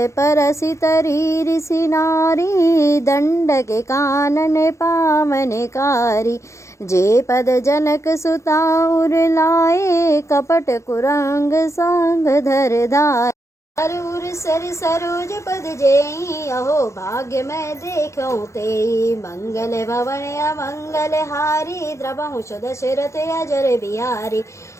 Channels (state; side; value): late; right; 0.14 ms